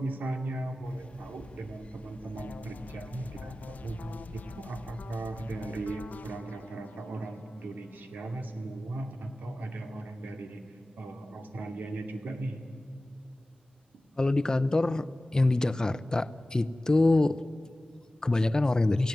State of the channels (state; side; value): normal; both; correlation 0.96